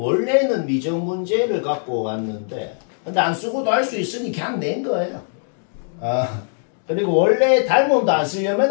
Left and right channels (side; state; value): right; silent; digital silence